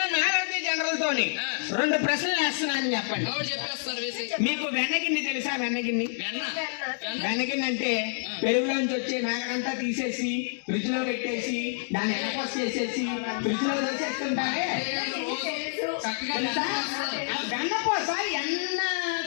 నాగార్జున జనరల్ తోని 2 ప్రశ్నలు వేస్తున్నాను, చెప్పండి. ఆవిడ చెప్పేస్తారు వేసి. మీకు వెన్నగిన్ని తెలుసా? వెన్నగిన్ని వెన్నగిన్ని అంటే పెరుగులోంచి వచ్చే మేకడంతా తీసేసి ఫ్రిడ్జ్ లో పెట్టేసి దాన్ని ఎనపోస్ చేసేసి ఫ్రిడ్జ్ లో వేసేస్తుంటారే. వెన్నపోస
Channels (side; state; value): right; silent; digital silence